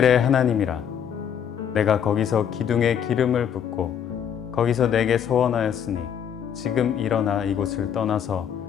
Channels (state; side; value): quieter; right; 8.6 dB